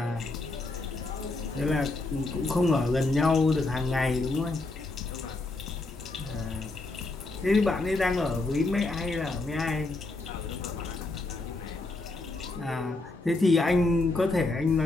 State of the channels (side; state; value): right; quieter; 3.1 dB